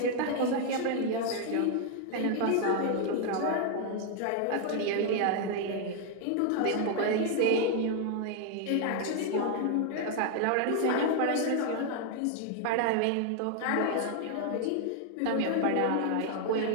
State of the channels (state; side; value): different; both; correlation 0.00